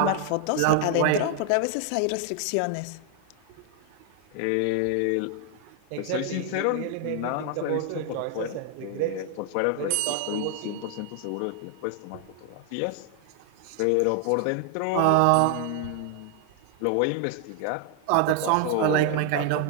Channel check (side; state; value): both; different; correlation 0.00